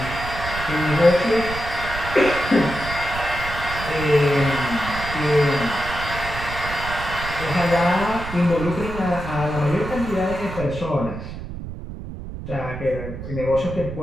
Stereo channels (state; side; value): noise; right; rumble, 9 dB below the sound